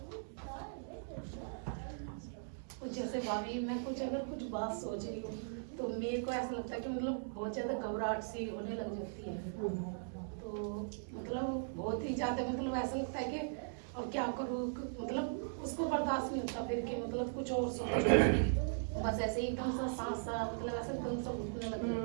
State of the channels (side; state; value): left; silent; digital silence